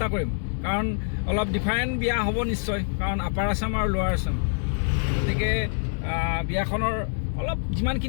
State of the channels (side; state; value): right; silent; 61 dB below the other